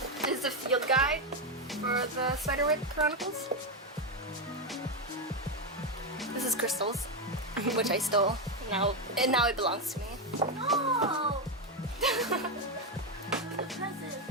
is the field guide for the Spiderwick Chronicles. This is Crystal's, which I stole, and now it belongs to me. Oh! The present.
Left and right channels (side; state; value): both; normal; correlation 0.07